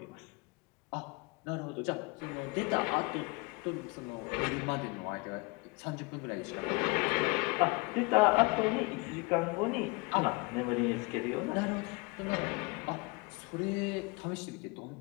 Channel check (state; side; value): quieter; right; 27.0 dB